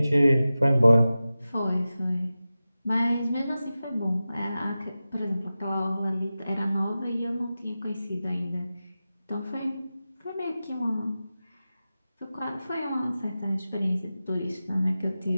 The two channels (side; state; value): both; inverted; correlation -0.94